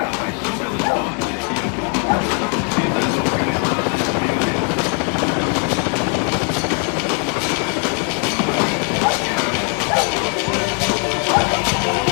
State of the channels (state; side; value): quieter; right; 39.8 dB